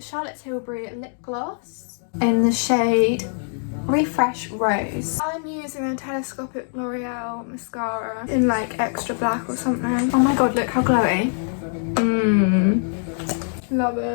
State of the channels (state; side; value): silent; right; 63 dB below the other